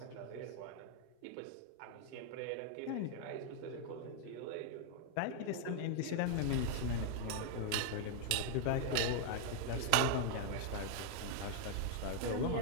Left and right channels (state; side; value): different; both; correlation 0.00